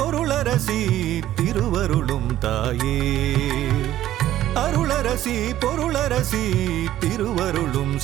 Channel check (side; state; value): left; quieter; 13.2 dB